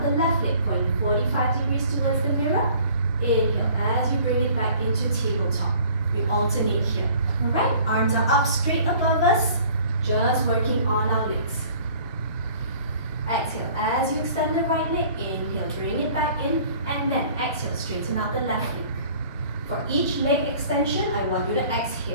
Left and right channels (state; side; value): inverted; both; correlation -0.51